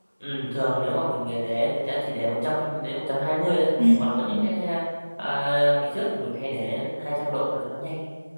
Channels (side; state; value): both; inverted; correlation -1.00